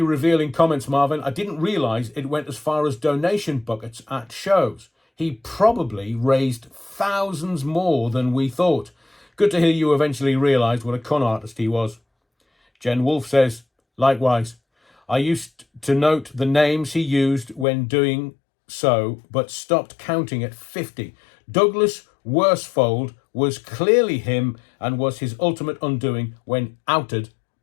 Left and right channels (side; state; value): right; drops out; at 17.7 s